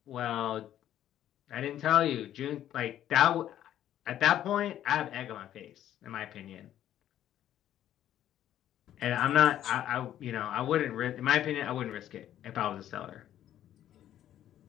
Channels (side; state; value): right; quieter; 11.6 dB